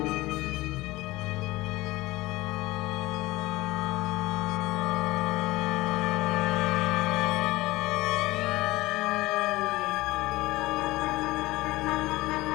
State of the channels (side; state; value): right; quieter; 19.4 dB